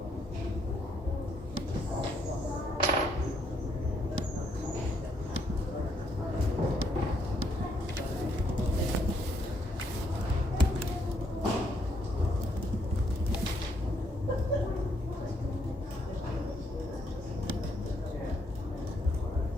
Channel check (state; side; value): normal; both; correlation 0.72